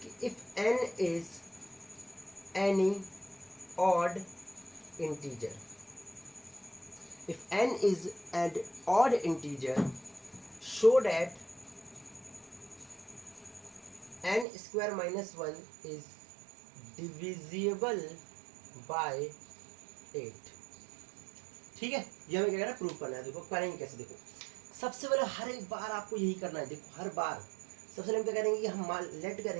कि if n is any odd integer, if n is an odd integer, show that n square minus 1 is divisible by 8। ठीक है, ये हमें क्या करना है, प्रूव करना है। देखो करेंगे कैसे, देखो सबसे पहले हर एक बार आपको यही करना है। देखो हर बार सबसे पहले हम क्या करेंगे कि हम लेट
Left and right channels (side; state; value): left; drops out; at 14.5 s